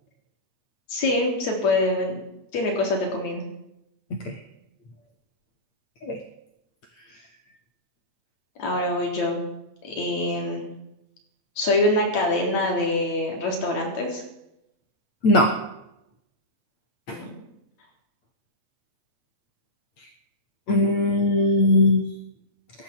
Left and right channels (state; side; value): late; right; 8.7 ms